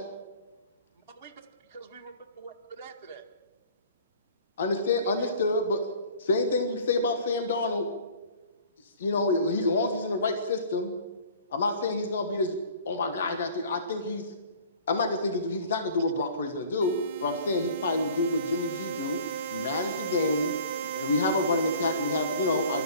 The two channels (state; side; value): inverted; both; correlation -0.48